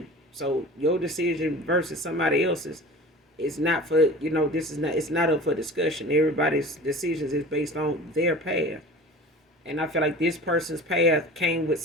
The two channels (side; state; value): both; normal; correlation 0.39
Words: So your decision versus somebody else's is not for, it's not up for discussion. Everybody's decisions is based on their path. And I feel like this person's path came with